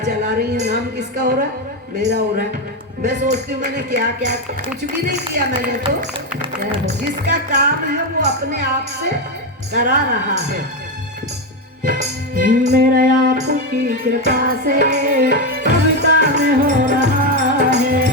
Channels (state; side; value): normal; both; correlation 0.10